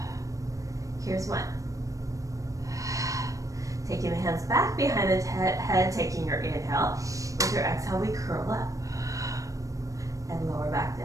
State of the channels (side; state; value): left; late; 0.16 ms